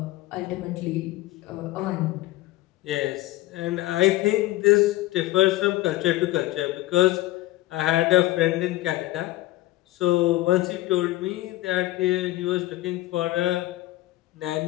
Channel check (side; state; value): right; quieter; 17.0 dB